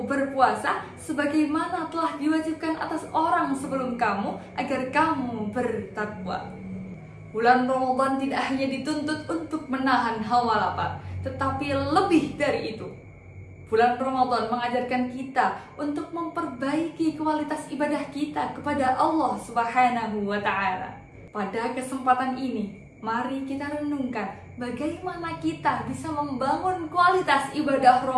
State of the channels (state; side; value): identical; both; correlation 1.00